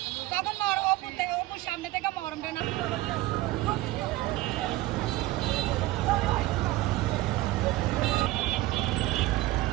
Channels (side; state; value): left; quieter; 17.4 dB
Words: তখন অপুর সামনে থেকে মরমটা না